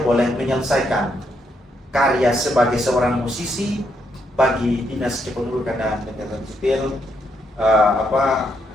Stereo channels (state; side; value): normal; both; correlation 0.77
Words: boleh menyelesaikan karya sebagai seorang musisi bagi Dinas Kependudukan dan Catatan Sipil,